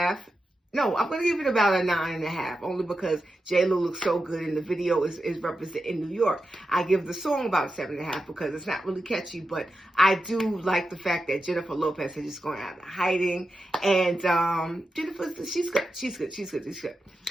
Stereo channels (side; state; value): both; normal; correlation 0.89